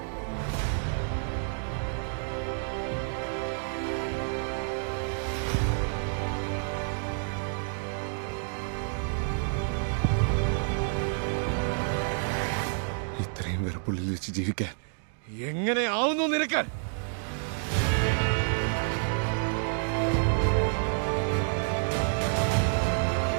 ഇത്രയും വെറുപ്പുള്ളിൽ വെച്ച് ജീവിക്കാൻ എങ്ങനെ ആവുന്നു നിനക്ക്?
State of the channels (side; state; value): left; silent; 59 dB below the other